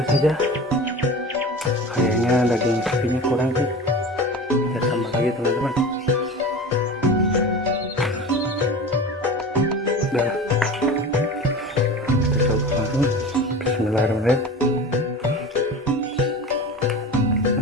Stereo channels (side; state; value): both; normal; correlation 0.34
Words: saja. Kayaknya daging sapinya kurang sih. Kita tambah lagi teman-teman. Udah, kita coba langsung. Bismillahirrahmanirrahim.